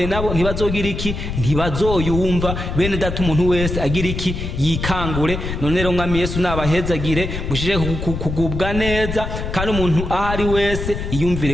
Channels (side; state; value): left; noise; rumble, 5 dB below the sound